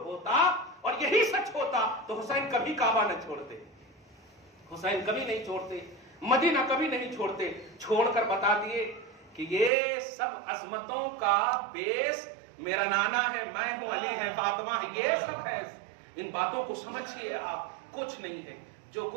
ہوتا اور یہی سچ ہوتا تو حسین کبھی کعبہ نہ چھوڑتے، حسین کبھی نہیں چھوڑتے، مدینہ کبھی نہیں چھوڑتے۔ چھوڑ کر بتا دیے کہ یہ سب عظمتوں کا بیس میرا نانا ہے، میں ہوں، علی ہے، فاطمہ ہے، یہ سب ہے۔ ان باتوں کو سمجھیے آپ، کچھ نہیں ہے، جو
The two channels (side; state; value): left; drops out; at 9.7 s